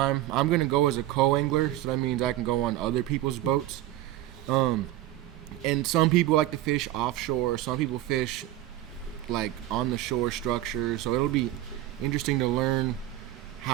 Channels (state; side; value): quieter; left; 14.5 dB